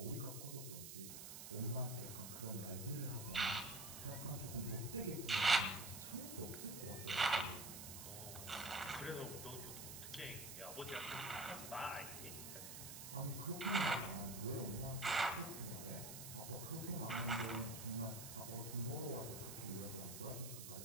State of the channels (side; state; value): right; noise; hiss, 8 dB below the sound